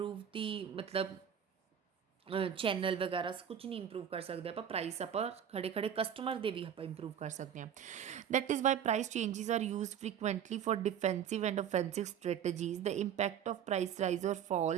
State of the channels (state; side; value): quieter; left; 8.9 dB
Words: ਦੀ ਮਤਲਬ ਚੈਨਲ ਵਗੈਰਾ ਕੁਝ ਨਹੀਂ ਇੰਪਰੂਵ ਕਰ ਸਕਦੇ ਆਪਾਂ। ਪ੍ਰਾਈਸ ਆਪਾਂ ਖੜੇ ਖੜੇ ਕਸਟਮਰ ਦੇ ਵੀ ਆਪਾਂ ਇੰਪਰੂਵ ਕਰ ਸਕਦੇ ਹਾਂ। That is why price changes are used frequently for defensive and offensive strategies. The impact of price rise और